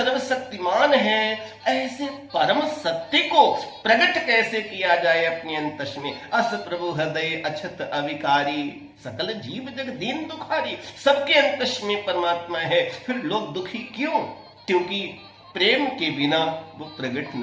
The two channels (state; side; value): identical; both; correlation 1.00